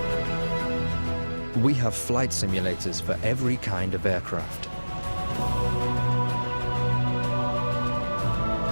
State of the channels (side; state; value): both; inverted; correlation -1.00